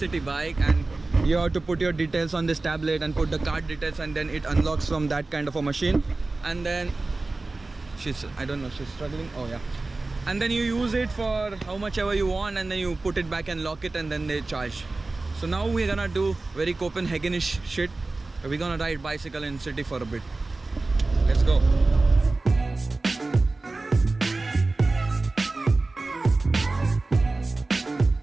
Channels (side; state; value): left; quieter; 3.3 dB